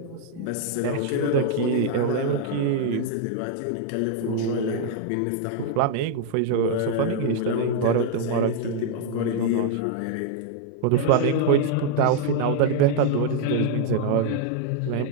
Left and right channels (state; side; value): different; both; correlation 0.00